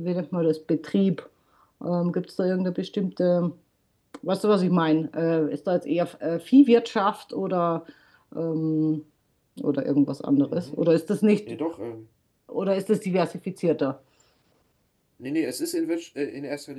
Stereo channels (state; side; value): identical; both; correlation 1.00